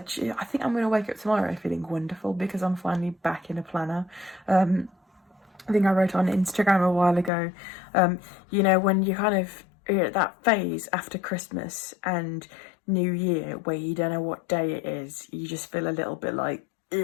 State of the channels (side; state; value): right; drops out; at 7.3 s